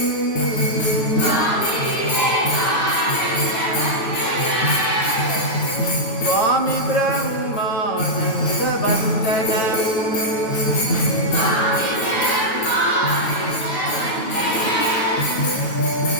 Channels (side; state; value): right; late; 9.3 ms